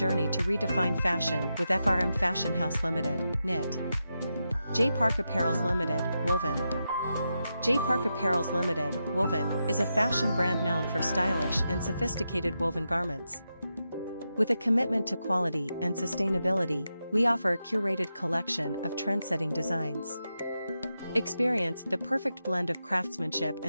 to redefine fashion with FRM Fashion House Limited, Knit. J Park Apparels Limited, Woven. J Park Apparels Limited, Woven, is a fashion brand known for stylish and sophisticated woven garments. With a commitment to quality and sustainability, we offer a curated collection of trend-setting designs. Experience the perfect blend of craftsmanship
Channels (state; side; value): inverted; both; correlation -0.88